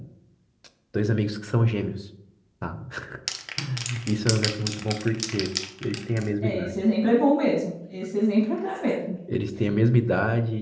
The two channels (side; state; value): both; identical; correlation 1.00